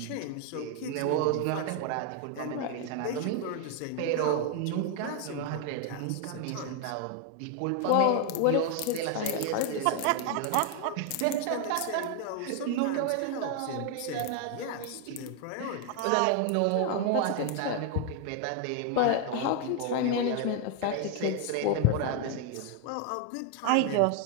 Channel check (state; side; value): different; both; correlation 0.01